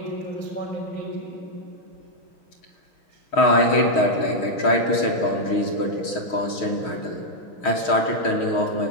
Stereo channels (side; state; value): right; late; 6.3 ms